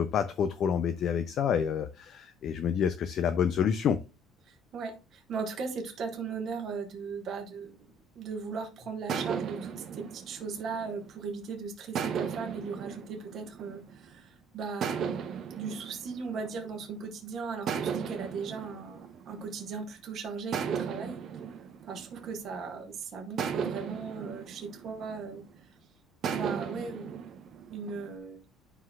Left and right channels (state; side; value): normal; both; correlation 0.57